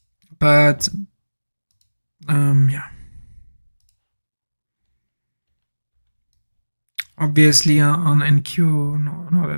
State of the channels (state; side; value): inverted; both; correlation -1.00